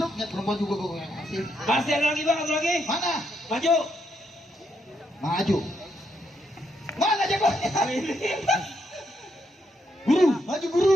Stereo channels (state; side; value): normal; both; correlation 0.78